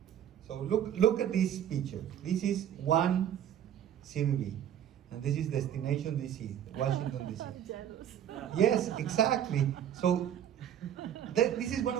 So look at this picture. This is one CVB, and this is destination DC, Washington DC. Jealous. Yes, exactly. So this is one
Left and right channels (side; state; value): left; quieter; 10.0 dB